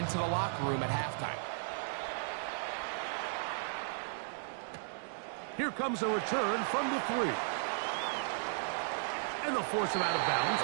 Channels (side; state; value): left; silent; digital silence